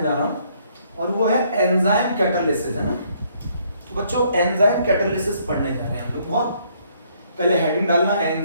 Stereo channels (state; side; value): inverted; both; correlation -0.67